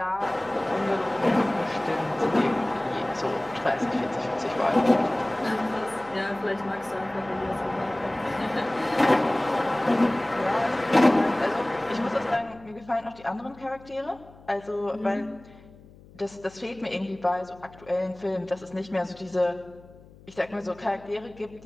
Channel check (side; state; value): left; noise; hum, 23 dB below the sound